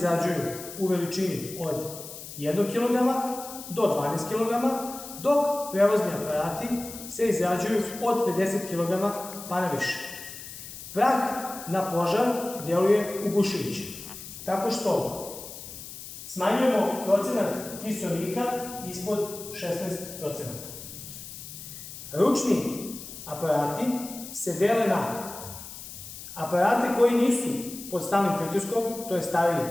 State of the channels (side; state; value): left; noise; hiss, 12 dB below the sound